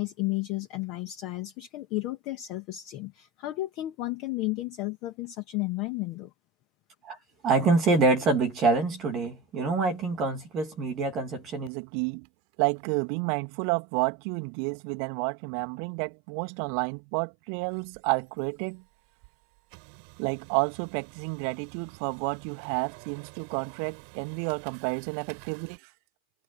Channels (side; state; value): left; drops out; at 11.7 s